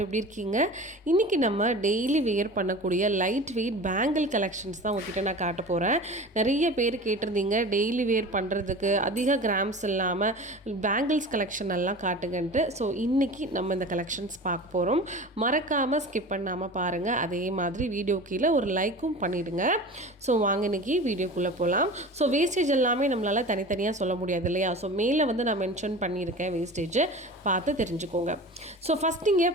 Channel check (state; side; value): normal; both; correlation 0.36